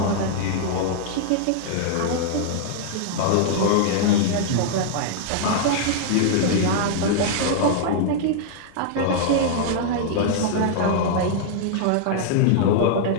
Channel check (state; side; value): different; both; correlation -0.01